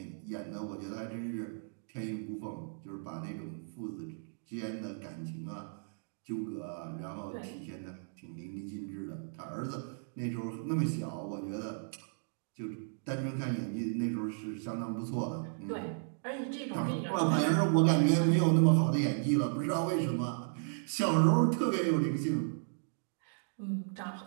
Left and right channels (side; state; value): left; silent; digital silence